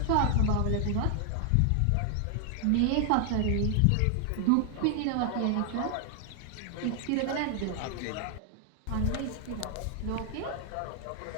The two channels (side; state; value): both; different; correlation 0.00